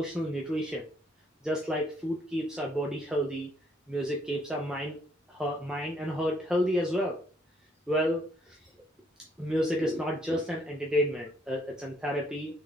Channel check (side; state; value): both; normal; correlation 0.68